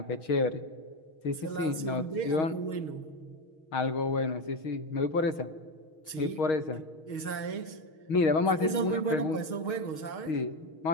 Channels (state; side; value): late; right; 6.4 ms